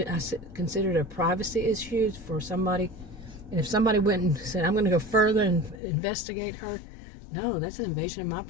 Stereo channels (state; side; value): drops out; right; at 5.8 s